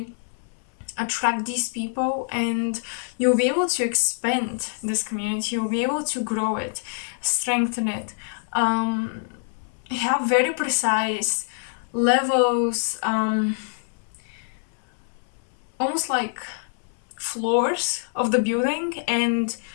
attract these people and you'll be able to expand this community, you'll be able to grow it, strengthen it, have very precise levels, almost like floors of the building and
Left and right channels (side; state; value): right; silent; 62 dB below the other